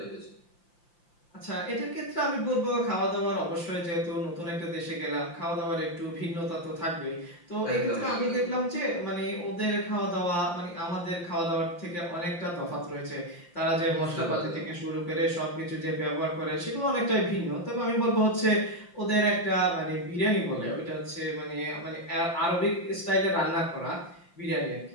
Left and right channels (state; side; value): late; right; 5.8 ms